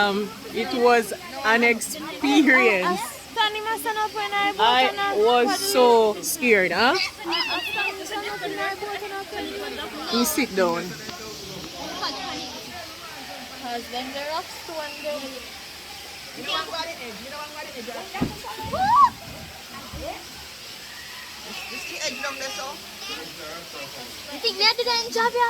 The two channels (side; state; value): both; identical; correlation 1.00